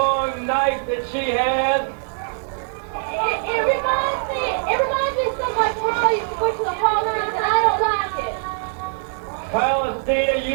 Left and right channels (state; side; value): silent; left; digital silence